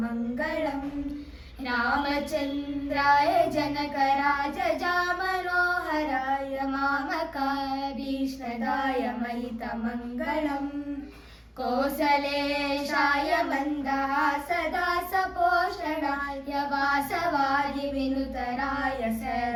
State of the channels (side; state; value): both; identical; correlation 1.00